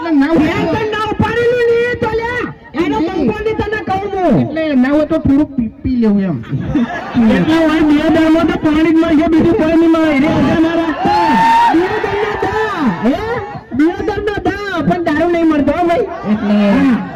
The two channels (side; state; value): both; identical; correlation 1.00